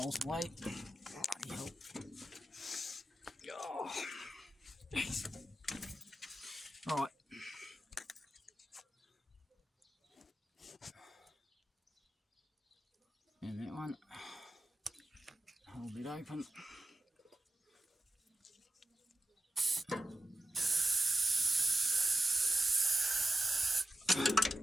away. Bloody hell. Oh. Right. And that one. Hold it open.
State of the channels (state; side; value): normal; both; correlation 0.92